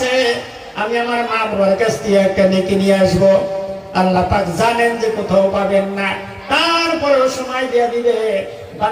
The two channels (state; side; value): identical; both; correlation 1.00